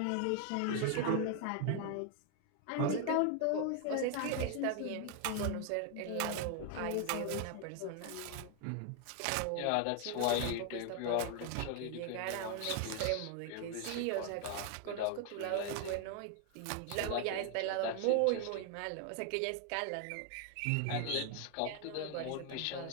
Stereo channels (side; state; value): both; different; correlation 0.01